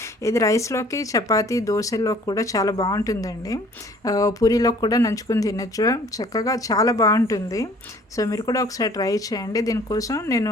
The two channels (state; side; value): normal; both; correlation 0.54